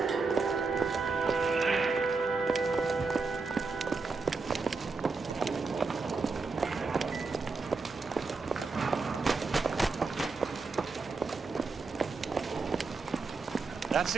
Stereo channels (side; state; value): left; quieter; 4.2 dB